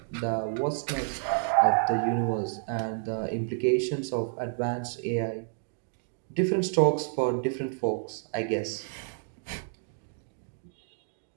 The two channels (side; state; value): left; silent; 58 dB below the other